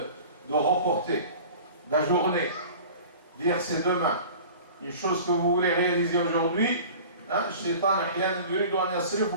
de reporter, d'ajourner, dire c'est demain. Une chose que vous voulez réaliser aujourd'hui, الشيطان أحيانا يريد أن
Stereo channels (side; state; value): both; inverted; correlation -0.41